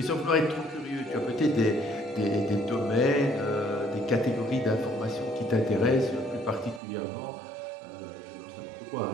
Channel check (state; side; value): drops out; left; at 6.8 s